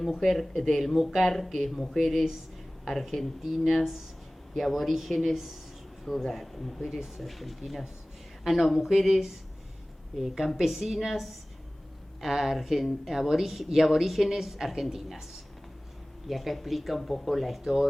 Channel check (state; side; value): normal; both; correlation 0.98